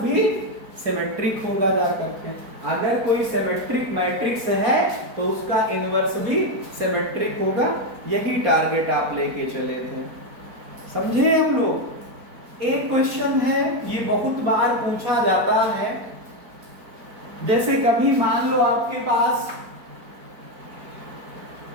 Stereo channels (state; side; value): late; left; 4.5 ms